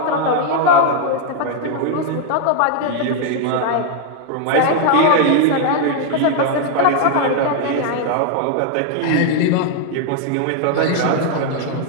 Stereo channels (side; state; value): both; different; correlation 0.00